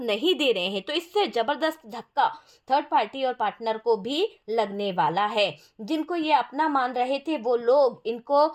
नहीं दे रहे हैं। तो इससे ज़बरदस्त धक्का थर्ड पार्टी और पार्टनर को भी लगने वाला है। जिनको ये अपना मान रहे थे वो लोग इनको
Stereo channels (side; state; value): both; identical; correlation 1.00